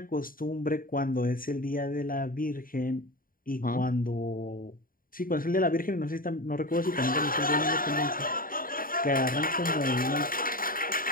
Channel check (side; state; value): right; late; 0.41 ms